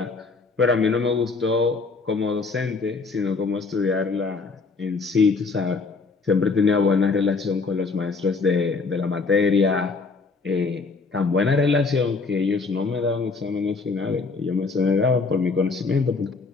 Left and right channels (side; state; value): right; quieter; 4.3 dB